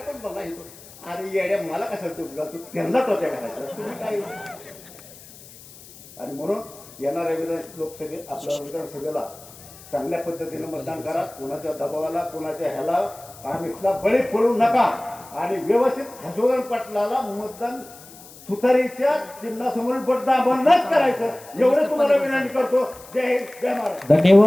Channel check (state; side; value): noise; left; hiss, 20 dB below the sound